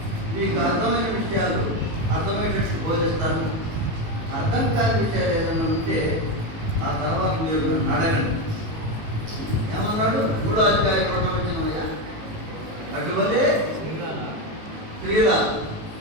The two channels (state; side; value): late; left; 19 ms